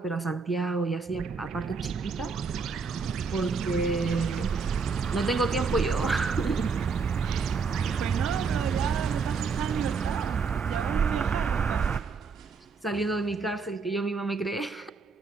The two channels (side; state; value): left; quieter; 5.0 dB